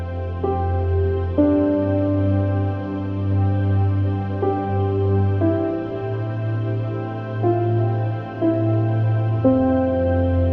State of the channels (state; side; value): identical; both; correlation 1.00